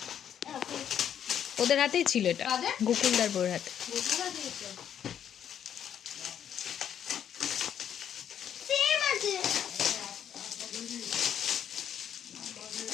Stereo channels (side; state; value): right; quieter; 9.3 dB